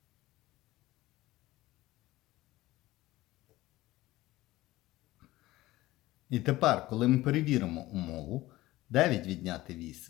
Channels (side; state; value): right; quieter; 17.4 dB